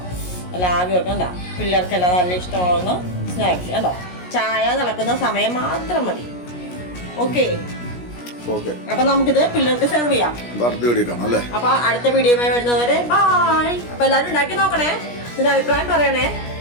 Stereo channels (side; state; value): right; late; 17 ms